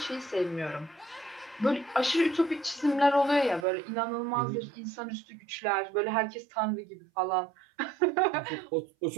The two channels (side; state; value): left; drops out; at 3.7 s